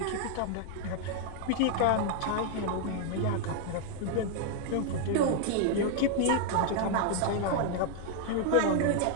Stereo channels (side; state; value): both; different; correlation 0.00